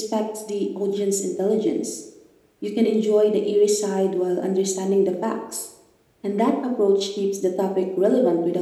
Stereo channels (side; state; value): both; identical; correlation 1.00